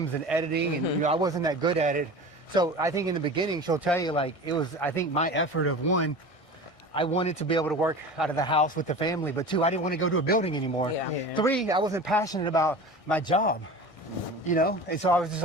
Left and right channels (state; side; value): late; right; 1.6 ms